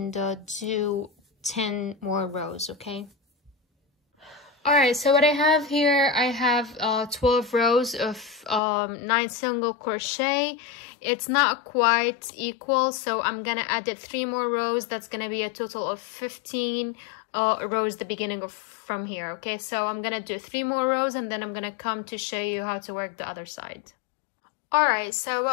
do 10 more rows, okay? Alright, so what I have here, I have 12 rows of 9 single crochet. It's not quite equal, so I'm gonna add it 3 more rows. That's gonna be a total of 15 rows the beginning of from here, okay? So I'm gonna do 3 more rows, and then I'm gonna come to show you how to work the other side. Alright, so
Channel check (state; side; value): drops out; right; at 8.6 s